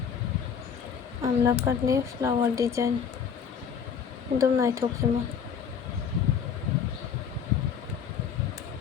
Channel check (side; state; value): right; quieter; 7.1 dB